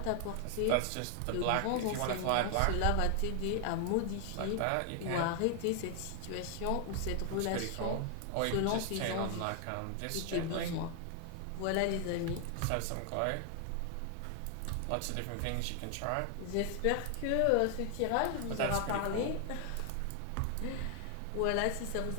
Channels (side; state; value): both; different; correlation 0.00